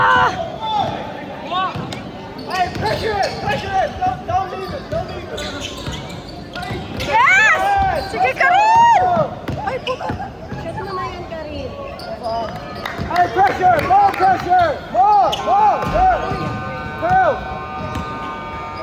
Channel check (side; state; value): both; identical; correlation 1.00